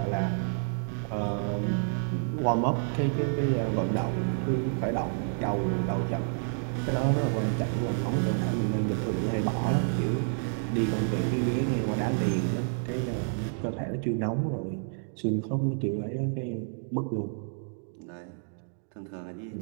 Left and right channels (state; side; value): silent; left; digital silence